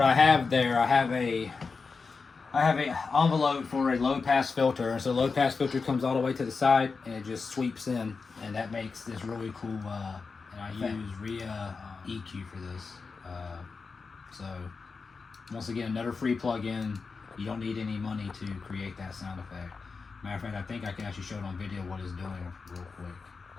I have there, I have a envelope for a low pass filter, and so the low pass filter comes all the way to the side and it just sweeps in, and that makes this really cool. And I use RIA EQ for this. So once again, another free plugin. You don't need any money to create that sound effect. Matter of fact, I think I can actually show it on video what it's doing real quick.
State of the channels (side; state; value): right; quieter; 4.7 dB